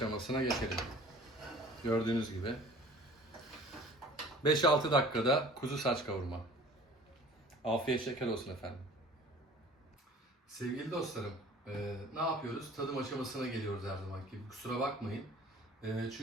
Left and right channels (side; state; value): both; normal; correlation 0.47